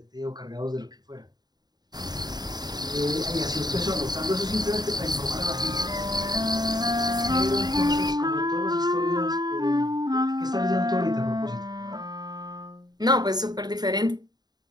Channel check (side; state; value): left; late; 0.20 ms